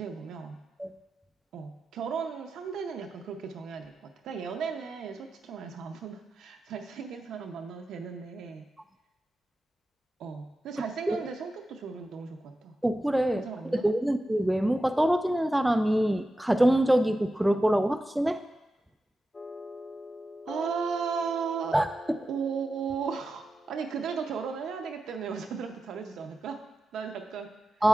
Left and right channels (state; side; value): normal; both; correlation 0.92